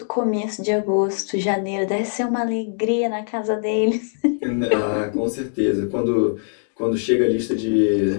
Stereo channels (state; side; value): silent; right; digital silence